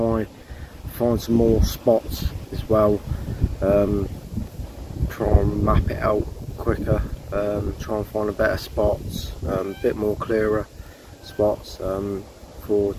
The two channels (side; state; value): both; identical; correlation 1.00